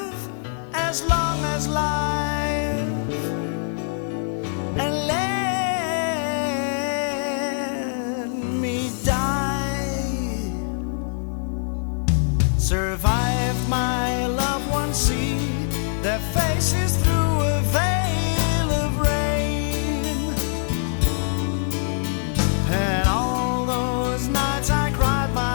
as long as life, and let me die. Survived my loved ones, see their faces through a veil of rain, and all those nights I cried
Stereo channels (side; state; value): right; silent; 56 dB below the other